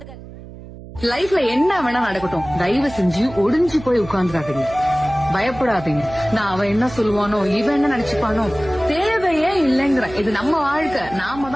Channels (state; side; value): noise; right; hum, 16 dB below the sound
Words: லைஃப்ல என்ன வேணா நடக்கட்டும், தயவு செஞ்சு ஒடிஞ்சு போய் உட்கார்ந்துடாதீங்க. பயப்படாதீங்க. நான் அவன் என்ன சொல்லுவானோ, இவன் என்ன நினைச்சுப்பானோ, தேவையே இல்லைங்கிற. இது நம்ம வாழ்க்கை, நாம